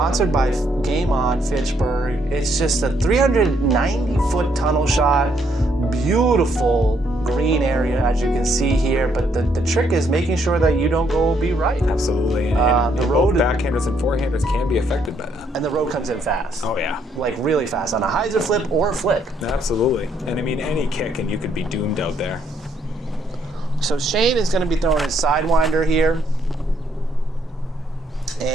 by Game On Fitchburg. It's just a 390-foot tunnel shot, beautiful green area, as you can see here. But the trick is making sure that you don't go OB right. Absolutely. And the road, backhanders and forehanders can be affected by that. And the road comes in fast. Oh, yeah. Like really fast on a hyzer flip or a flick. Absolutely. And I mean, any kick and you could be doomed out there. So Shane is going to be throwing his sidewinder here.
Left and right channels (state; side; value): normal; both; correlation 0.71